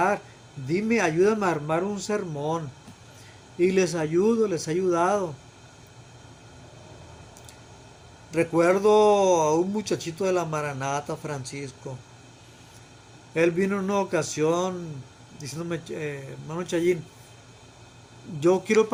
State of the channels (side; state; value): both; identical; correlation 1.00